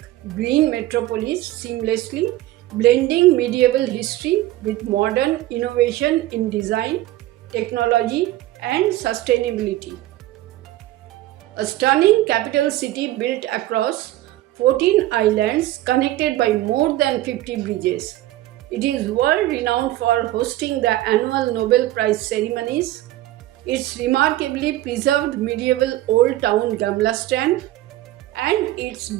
green metropolis, seamlessly blending medieval history with modern innovation in design, technology, and sustainability. A stunning capital city built across 14 islands connected by more than 50 bridges. It is world renowned for hosting the annual Nobel Prize ceremonies. Its remarkably preserved medieval old town Gamla and its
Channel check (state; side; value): quieter; left; 15.7 dB